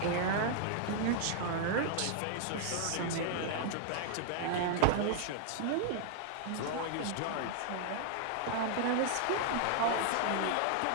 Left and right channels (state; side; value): different; both; correlation -0.01